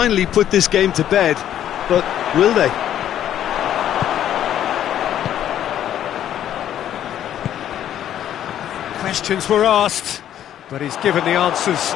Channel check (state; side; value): quieter; right; 10.9 dB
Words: put this game to bed, but will they? Questions were asked, but he's given the answers.